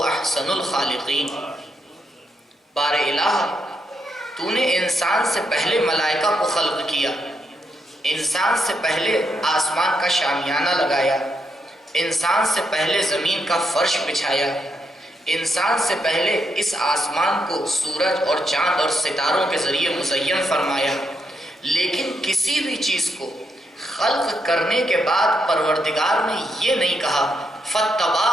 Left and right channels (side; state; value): both; normal; correlation 0.80